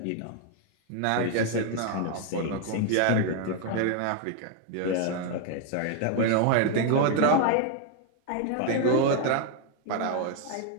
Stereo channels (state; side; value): different; both; correlation 0.01